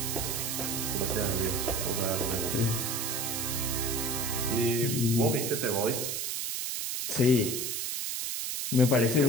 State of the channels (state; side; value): noise; right; hiss, 2 dB below the sound